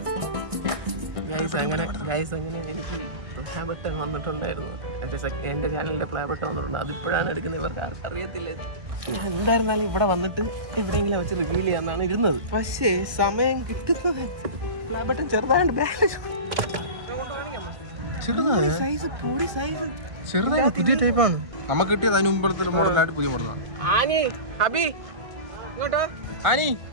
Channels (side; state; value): left; late; 1.6 ms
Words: അങ്ങനെ എനിക്ക് പ്ലേ ബട്ടൺ വന്നിട്ടുണ്ടായിരുന്നു. എന്റെ ചാനലിന്റെ പ്ലേ ബട്ടൺ വന്നിട്ടുണ്ട്. അതിപ്പോഴാണ് എടുക്കുന്നത്. ഇവർക്ക് ആർക്കും അറിയത്തില്ല. എന്തായിരുന്നാലും ഇവിടെ വന്നിട്ട് എവിടെയെങ്കിലും വെച്ച് റിവീൽ ചെയ്യാന്നാണ് ഇരുന്നത്. പക്ഷേ സമയം കിട്ടുന്നത് പ്ലേ ബട്ടൺ ചെറുതായിട്ട് ചെറുതായ പുതിയ ടൈപ്പാണ് നമുക്ക് കിട്ടിയത്. അതിന് മുമ്പത്തെ മോഡലായിട്ട് പുതിയ മോഡലാണ്. ആനി ഹബി ഇങ്ങോട്ടോ. ആനി